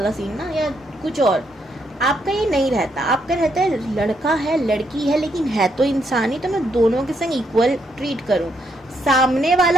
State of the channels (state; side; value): normal; both; correlation 0.76